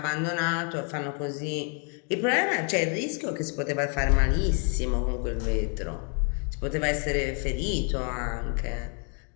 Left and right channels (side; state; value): right; quieter; 39.4 dB